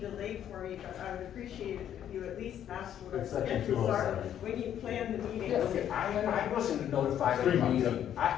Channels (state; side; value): quieter; right; 10.2 dB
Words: for me, but I would appreciate it if you at least asked what our It's section schedules are 207. when you plan the meetings. Yeah, okay, I wasn't notified of 3 the months. meeting.